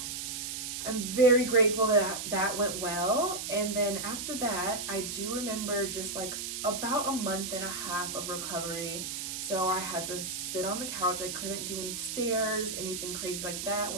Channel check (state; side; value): noise; right; hiss, 5 dB below the sound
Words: I'm very grateful that that went well. And then after that, I do remember just like about a month and a half of recovery. So I had to sit on the couch. I couldn't do any stairs, anything crazy like that.